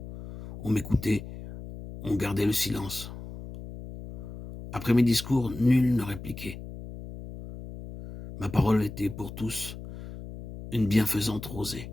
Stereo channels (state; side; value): noise; left; hum, 12 dB below the sound